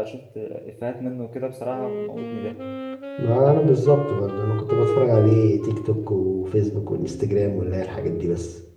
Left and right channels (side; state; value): both; identical; correlation 1.00